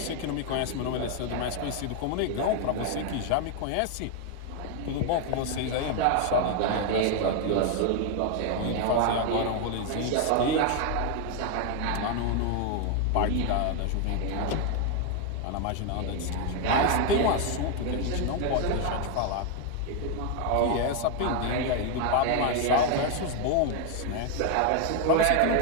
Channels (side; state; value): both; different; correlation 0.01